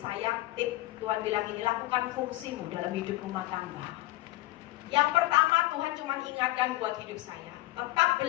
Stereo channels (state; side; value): quieter; right; 17.8 dB